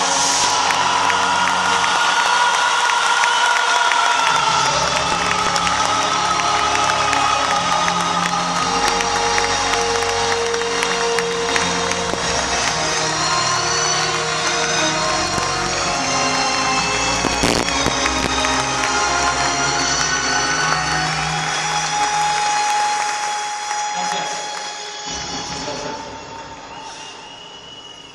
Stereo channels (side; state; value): both; identical; correlation 1.00